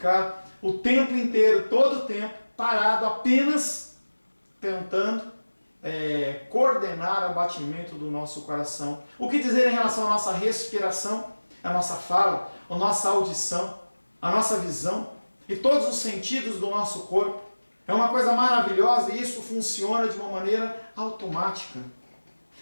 o tempo inteiro, todo o tempo, parado, apenas tentando coordenar o batimento do nosso coração. O que dizer em relação à nossa respiração, a nossa fala, a nossa audição, a nossa visão e todos os sentidos do nosso corpo? É uma coisa maravilhosa e isso funciona de uma maneira automática.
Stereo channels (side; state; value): both; inverted; correlation -1.00